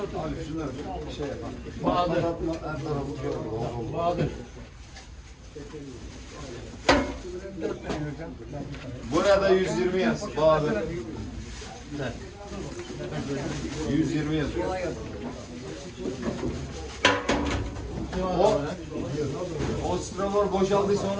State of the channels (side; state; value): both; identical; correlation 1.00